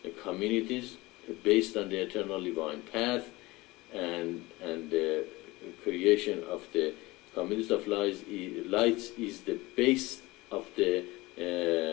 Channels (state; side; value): quieter; right; 21.1 dB